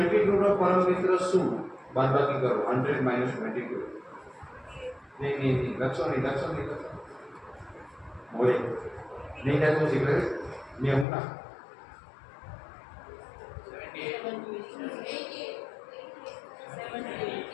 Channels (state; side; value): drops out; right; at 11.1 s